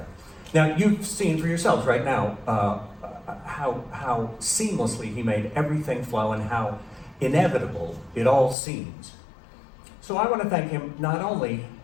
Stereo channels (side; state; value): right; drops out; at 8.6 s